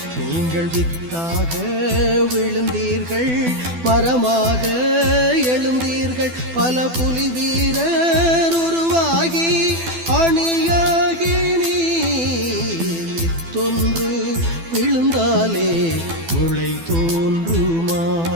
நீங்கள் வித்தாக விழுந்தீர்கள், மரமாக எழுந்தீர்கள். பல புலி வீரர் உருவாகி அணியாகி நீர் வித்தொன்று விழுந்தாலே முளை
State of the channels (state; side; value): late; left; 12 ms